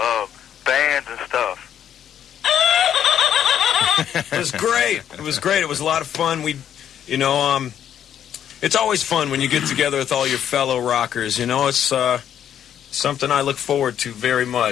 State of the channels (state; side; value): quieter; right; 9.7 dB